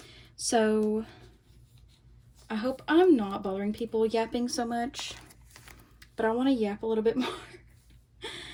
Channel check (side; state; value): both; identical; correlation 1.00